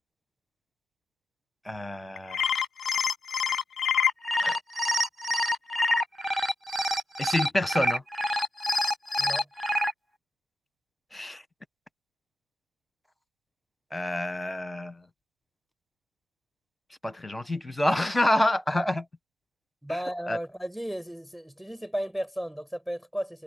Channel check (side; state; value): both; normal; correlation 0.89